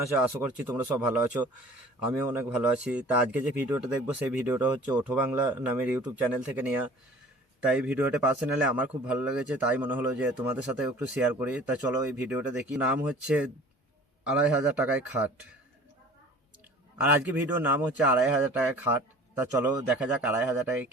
আশা করছি তোমরা সব ভালো আছো, আমিও অনেক ভালো আছি। তা আজকে যে ভিডিওটা দেখবো সেই ভিডিওটা হচ্ছে ওঠো বাংলা নামের ইউটিউব চ্যানেল থেকে নেওয়া। তাই ভিডিওটা পার্সোনালি আমার খুব ভালো লেগেছে, তাই মনে হলো যে তোমাদের সাথে একটু শেয়ার করি। তা চলো এই ভিডিওটা দেখি। নাম হচ্ছে 2500 টাকায় খাট, আর আজকে ভিডিওর নাম হচ্ছে 2500 টাকায় খাট। তা চলো দেখা যাক 2500 টাকায়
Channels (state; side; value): normal; both; correlation 0.46